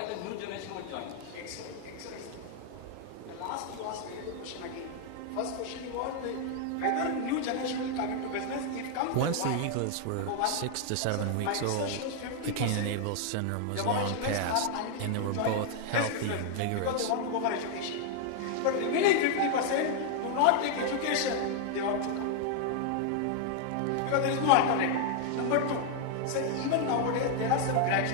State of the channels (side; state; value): both; different; correlation 0.00